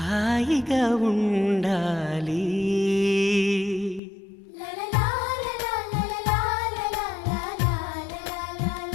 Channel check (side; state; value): right; drops out; at 4.0 s